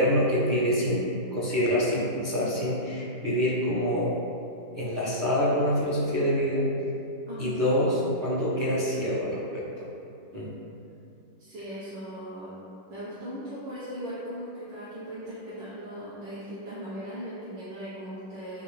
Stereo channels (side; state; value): left; late; 10 ms